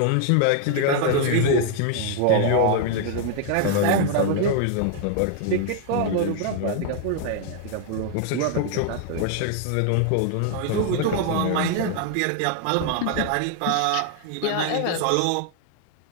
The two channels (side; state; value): both; different; correlation 0.00